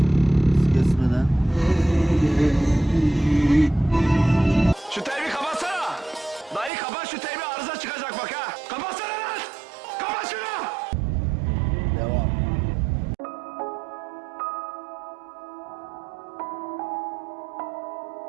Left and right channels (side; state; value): left; drops out; at 6.7 s